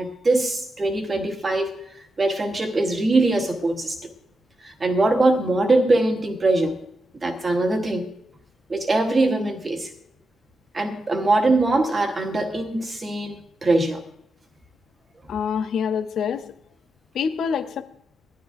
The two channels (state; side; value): normal; both; correlation 0.87